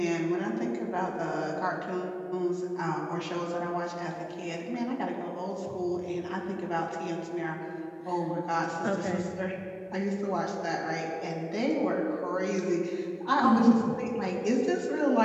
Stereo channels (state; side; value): identical; both; correlation 1.00